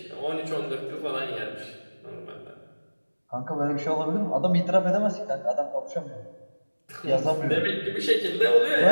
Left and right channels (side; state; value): both; inverted; correlation -1.00